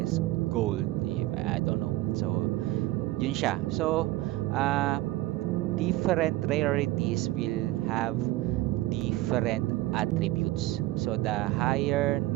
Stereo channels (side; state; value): left; quieter; 17.3 dB